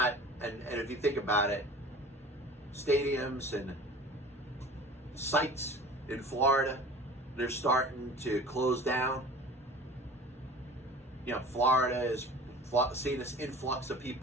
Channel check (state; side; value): normal; both; correlation 0.41